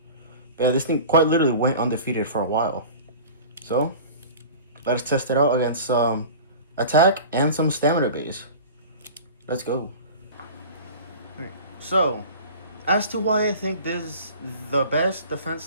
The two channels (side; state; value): both; inverted; correlation -0.38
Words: But yeah, this thing quite literally went undefeated for a while. So, let us test it out against some attack and some stamina base. Let's go. Okay. So, as to why I think this is the best defense